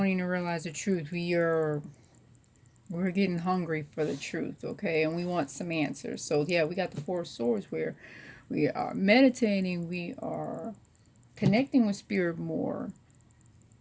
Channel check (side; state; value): both; identical; correlation 1.00